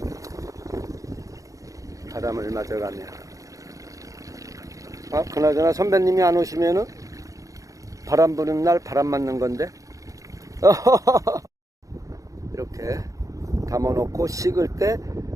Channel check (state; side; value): late; left; 0.16 ms